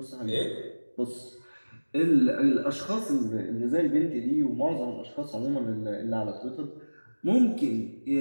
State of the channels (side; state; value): both; inverted; correlation -1.00